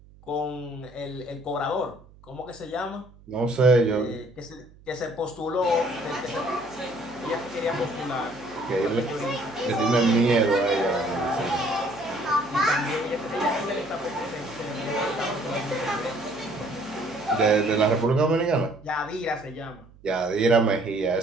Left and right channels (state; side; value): noise; right; hum, 24 dB below the sound